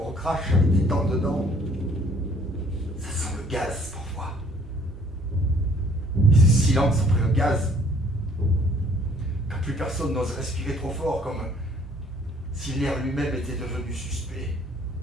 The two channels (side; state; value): both; normal; correlation 0.59